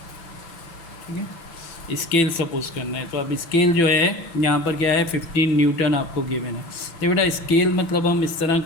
ठीक है, स्केल सपोज करना है। तो अब स्केल जो है यहाँ पर क्या है, 15 न्यूटन आपको गिवन है। तो बेटा स्केल मतलब हम इस तरह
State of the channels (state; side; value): late; right; 5.9 ms